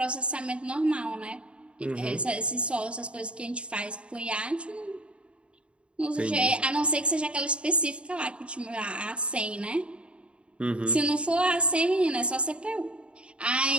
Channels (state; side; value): late; left; 0.058 ms